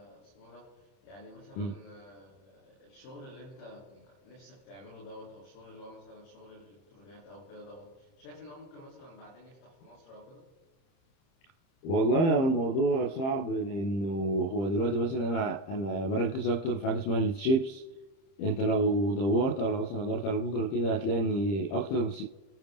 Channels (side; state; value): right; late; 31 ms